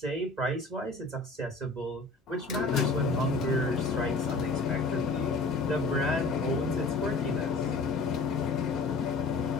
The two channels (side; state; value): right; quieter; 3.5 dB